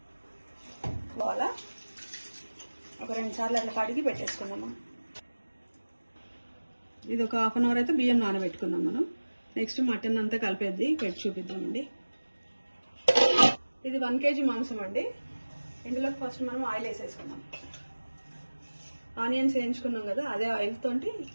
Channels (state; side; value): inverted; both; correlation -1.00